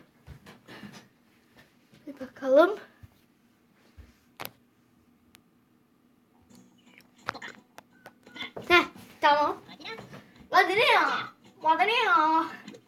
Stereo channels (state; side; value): identical; both; correlation 1.00